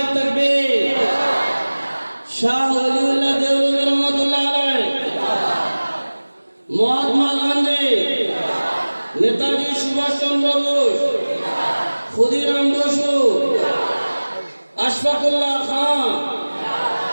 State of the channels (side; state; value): both; inverted; correlation -1.00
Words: তাকবীর। শাহ ওলিউল্লাহ দেওবন্দি রহমাতুল্লাহ আলাইহি, মহাত্মা গান্ধী, নেতাজি সুভাষ চন্দ্র বোস, ক্ষুদিরাম বসু, আশফাকুল্লাহ খান,